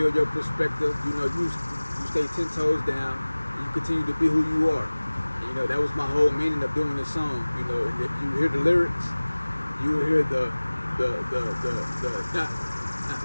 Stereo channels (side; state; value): both; inverted; correlation -1.00